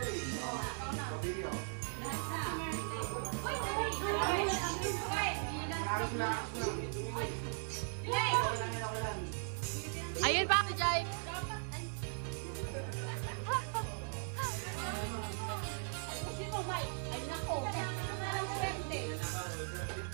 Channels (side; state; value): left; silent; 52 dB below the other